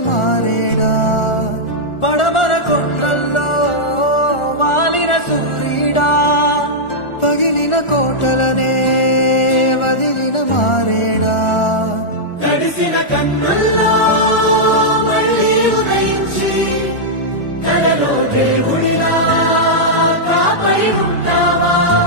మారేడా పడమర కొండల్లో వాలిన సూర్యుడా పగిలిన కోటలనే వదిలిన మారేడా తడిసిన కన్నుల్లో మళ్ళీ ఉదయించి కలలో దేవుడిలా కాపడి ఉంటావా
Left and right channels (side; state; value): right; late; 1.4 ms